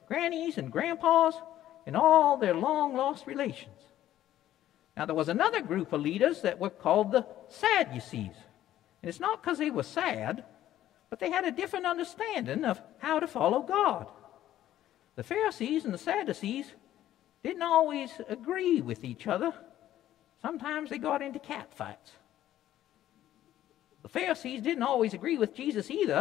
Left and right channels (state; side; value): quieter; right; 12.8 dB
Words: grannies and grandpas and all their long-lost relations. Now, there was another group of leaders that were called the Sadducees. And it's not because they were sad, but they had a different understanding of how to follow God. The Pharisees and the Sadducees didn't always agree with each other. Sometimes they got into catfights. The Pharisees didn't always agree with Jesus either,